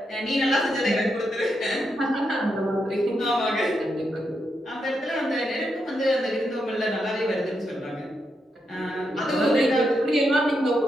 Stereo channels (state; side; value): normal; both; correlation 0.83